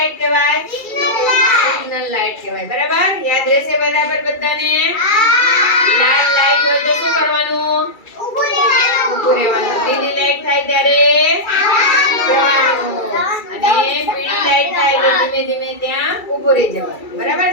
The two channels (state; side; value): late; right; 2.3 ms